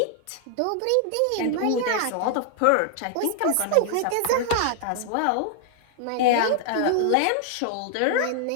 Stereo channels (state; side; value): different; both; correlation 0.00